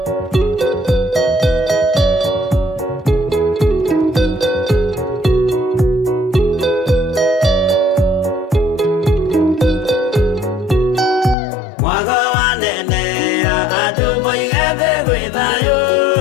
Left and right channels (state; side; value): drops out; right; at 11.4 s